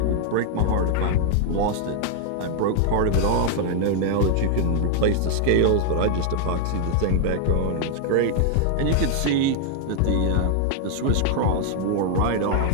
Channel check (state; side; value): different; both; correlation 0.00